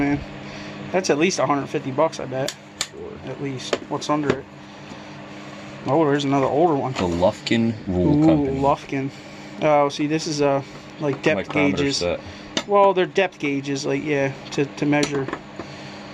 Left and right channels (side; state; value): both; identical; correlation 1.00